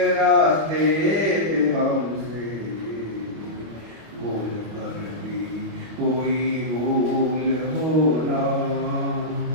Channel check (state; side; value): late; left; 25 ms